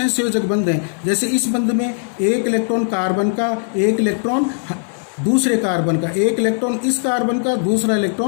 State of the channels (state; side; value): silent; right; 56 dB below the other